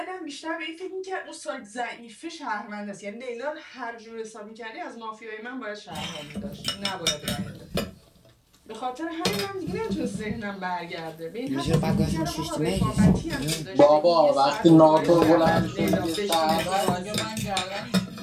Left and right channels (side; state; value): both; identical; correlation 1.00